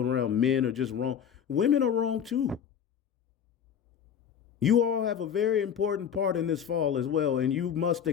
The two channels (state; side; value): quieter; right; 8.3 dB